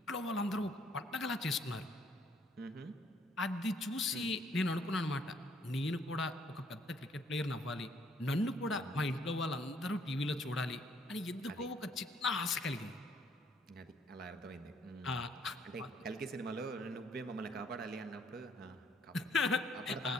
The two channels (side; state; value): both; normal; correlation 0.66